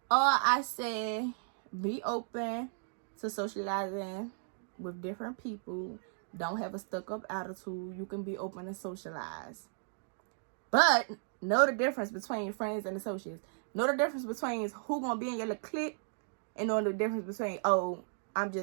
I say, be open to socializing with different people. Don't have a stuck-up attitude. You can be open and socialize. But know the difference between friends and associates. Know the difference between who gonna be in your little clique, and know the difference between, oh, I'm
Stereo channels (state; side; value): silent; left; digital silence